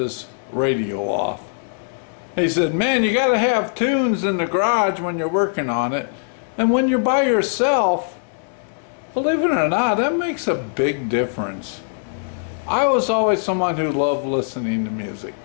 radio off. He said, "Man, you gotta have tunes in the garage when you're working on it, and when you're by yourself, believe it or not, that makes a big difference." I was always someone who loved listening to music,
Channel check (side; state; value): right; silent; 65 dB below the other